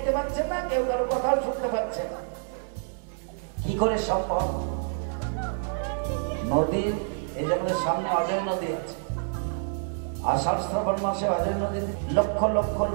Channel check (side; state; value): left; silent; 57 dB below the other